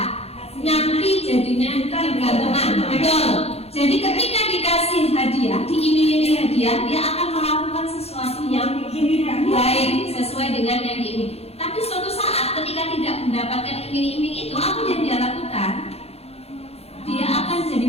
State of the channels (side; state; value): right; late; 0.29 ms